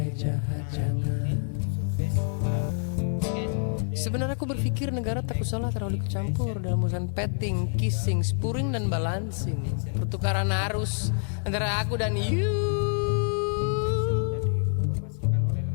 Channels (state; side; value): silent; right; digital silence